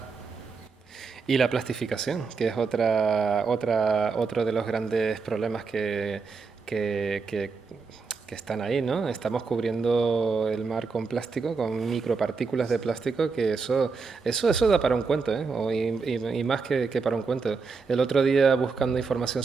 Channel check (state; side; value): quieter; left; 4.8 dB